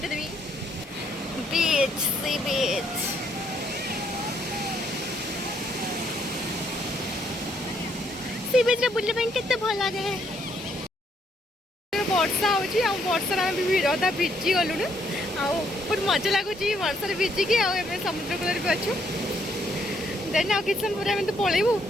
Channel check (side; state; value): both; normal; correlation 0.70